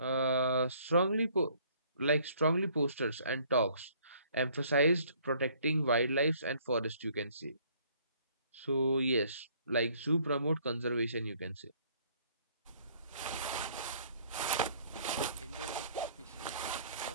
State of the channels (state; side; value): inverted; both; correlation -0.60